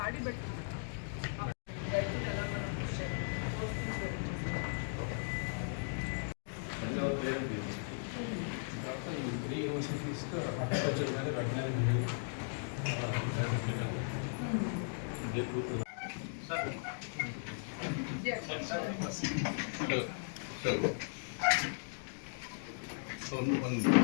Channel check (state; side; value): silent; right; digital silence